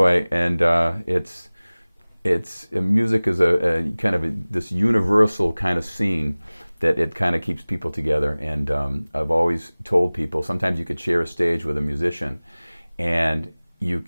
and music is a kind of this universal kind of scene that it kind of keeps people together. And I've always told people, sometimes you could share a stage with a musician, and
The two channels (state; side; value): inverted; both; correlation -0.99